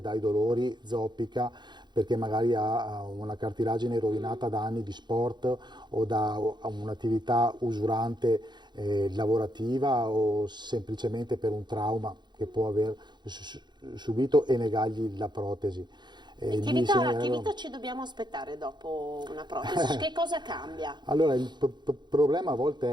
dolori, zoppica, perché magari ha una cartilagine rovinata da anni di sport o da un'attività usurante lavorativa o semplicemente per un trauma che può aver subito, e negargli la protesi. E che vita ci dobbiamo aspettare dopo una protesi? Che cosa cambia? Allora, il problema a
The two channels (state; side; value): late; left; 0.21 ms